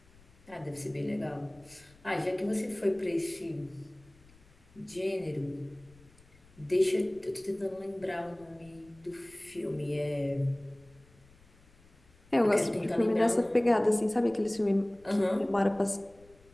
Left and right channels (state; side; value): noise; left; rumble, 27 dB below the sound